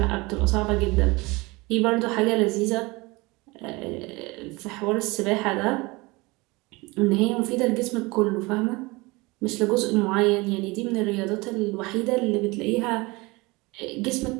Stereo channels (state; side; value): quieter; left; 23.9 dB